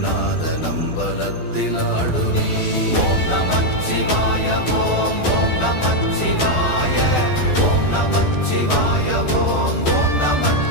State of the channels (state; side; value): late; right; 12 ms